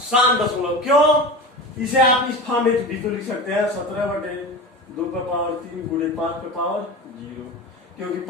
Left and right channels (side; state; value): both; normal; correlation 0.29